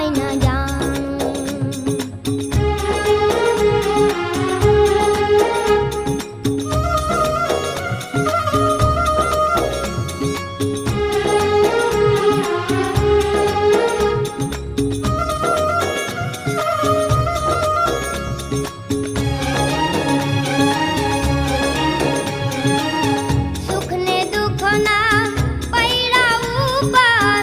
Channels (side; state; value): both; identical; correlation 1.00